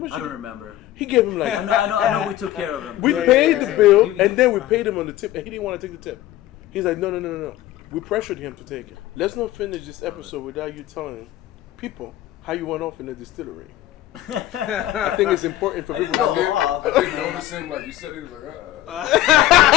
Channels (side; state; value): right; quieter; 14.1 dB